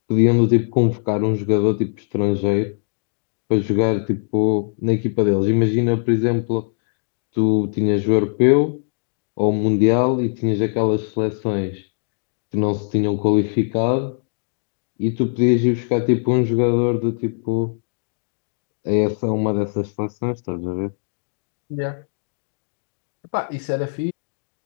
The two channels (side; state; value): right; silent; digital silence